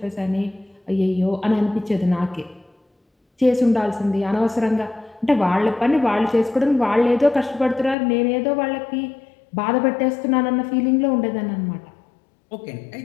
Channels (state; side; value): drops out; right; at 8.0 s